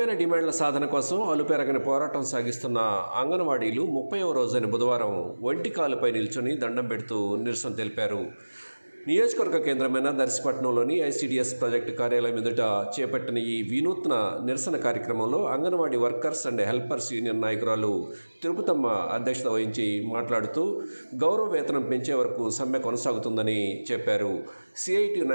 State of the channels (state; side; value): inverted; both; correlation -1.00